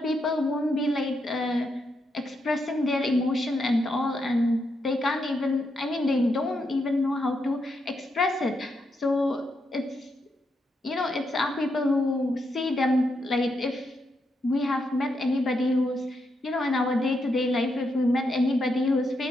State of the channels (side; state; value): both; normal; correlation 0.81